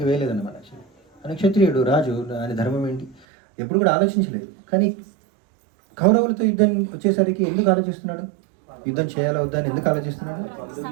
వేయలేదన్నమాట. ఆయన క్షత్రియుడు, రాజు, ఆయన ధర్మం ఏంటి ఎప్పుడు కూడా ఆలోచించలేదు. కానీ కౌరవులతో యుద్ధం వచ్చేసరికి ఎందుకు ఆలోచిస్తున్నాడు? యుద్ధం చేయాలా వద్దా అని ఎందుకు ఆలోచిస్తున్నాడు?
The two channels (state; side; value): drops out; left; at 3.2 s